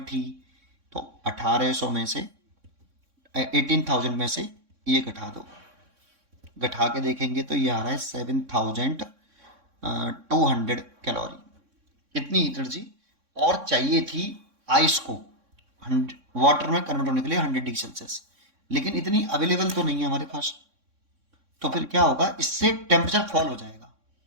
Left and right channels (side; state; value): left; late; 3.6 ms